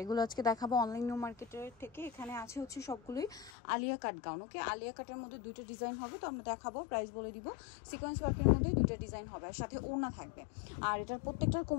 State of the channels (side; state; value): right; drops out; at 3.5 s